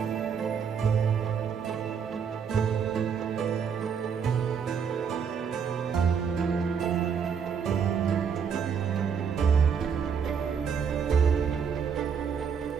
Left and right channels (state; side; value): quieter; left; 6.8 dB